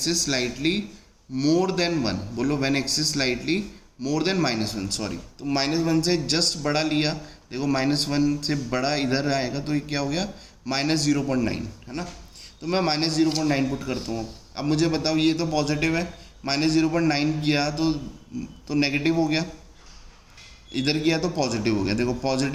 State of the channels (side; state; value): both; identical; correlation 1.00